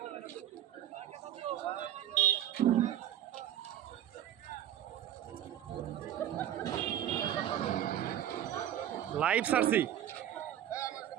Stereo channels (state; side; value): quieter; left; 11.3 dB